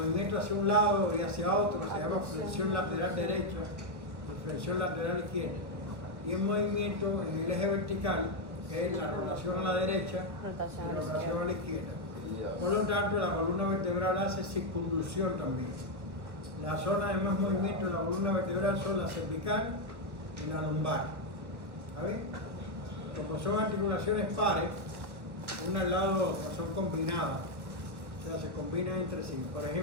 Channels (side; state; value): left; late; 1.3 ms